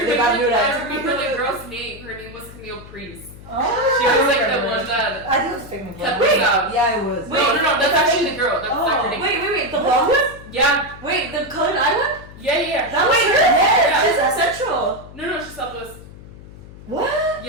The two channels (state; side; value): noise; left; hum, 17 dB below the sound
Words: remember the girl's name. Her name was Camille Priest. She was like the one that I think it was a fake cut name. this out. Yeah, it was. No, that's actually the girl. That's not her name. Wait, the blonde one? Yeah, Wait, the colored eye one? yeah. That was her? Yeah. She's a central. No, she's Southwest. What?